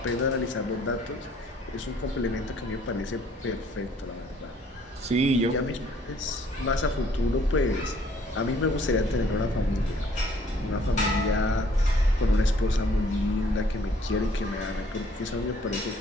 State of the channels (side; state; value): both; normal; correlation 0.60